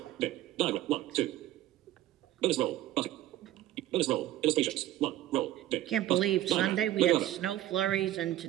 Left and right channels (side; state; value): left; quieter; 14.1 dB